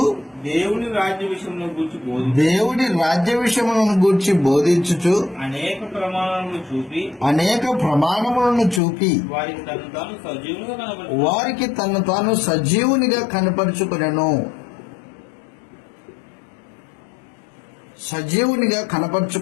దేవుని రాజ్య విషయములను గూర్చి బోధించుచు అనేక ప్రమాణములను చూపి వారికి తను తాను సజీవునిగా కనపరుచుకొనెను. సజీవునిగా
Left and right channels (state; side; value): drops out; right; at 8.8 s